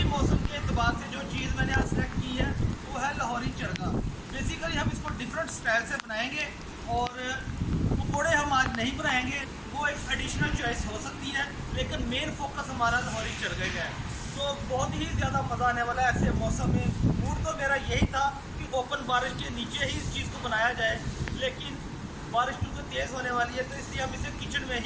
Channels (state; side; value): identical; both; correlation 1.00